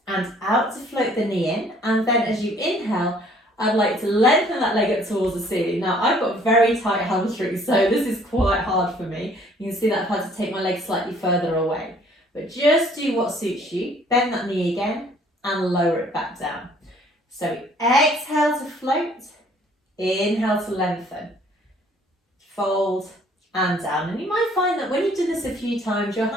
and out to float the knee in. And then as you inhale, I'd like to lengthen that leg up towards the ceiling. Now I've got very tight hamstrings, so this is quite hard for me. You can see that I've had to take my leg slightly further away. But just do what suits you. Bend that knee again and lower it back down. So exhale to float. Inhale to lengthen, fold and down. And you might find that when you've done this a few times, your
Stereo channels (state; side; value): normal; both; correlation 0.59